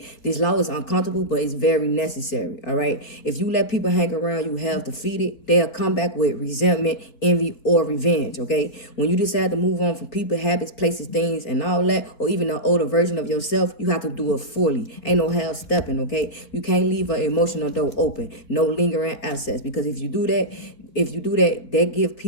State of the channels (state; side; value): late; right; 4.0 ms